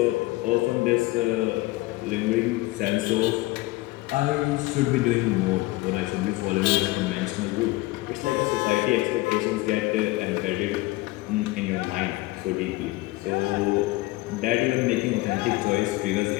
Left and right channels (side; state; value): right; quieter; 20.3 dB